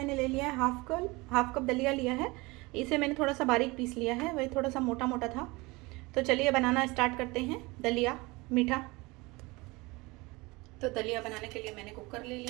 ले लिया है हाफ कप दलिया लिया है। इसे मैंने थोड़ा सा बारीक पीस लिया है, वही थोड़ा सा मोटा मोटा था। तो चलिए बनाना स्टार्ट करते हैं दलिया मीठा। तो दलिया बनाने के लिए मैंने कुकर ले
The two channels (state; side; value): quieter; left; 23.8 dB